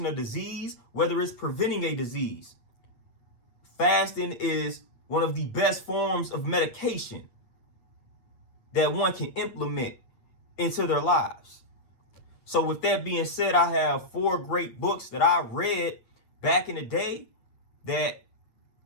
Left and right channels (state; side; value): late; right; 8.7 ms